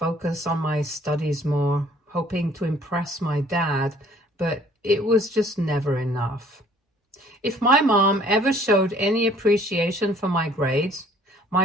on my studies more, hoping to impress my dad, but it was just never enough. If my mom ever showed any appreciation for my grades,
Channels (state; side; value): normal; both; correlation 0.57